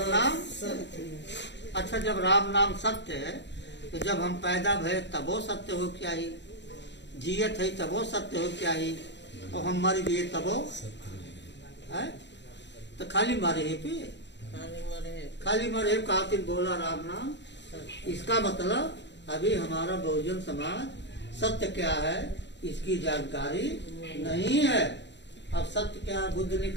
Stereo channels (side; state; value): right; late; 0.52 ms